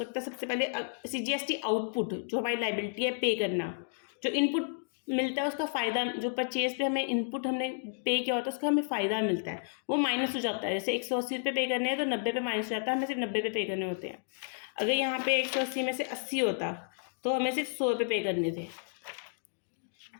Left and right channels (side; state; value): right; silent; digital silence